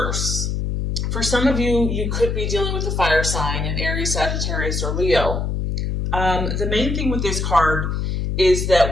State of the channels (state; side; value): noise; left; hum, 1 dB below the sound